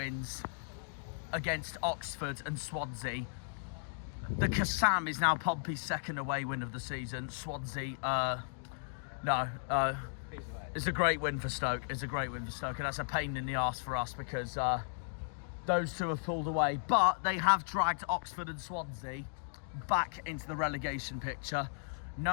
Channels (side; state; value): right; silent; digital silence